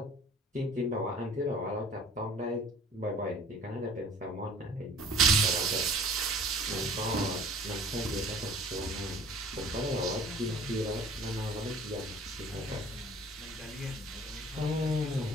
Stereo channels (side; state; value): both; normal; correlation 0.49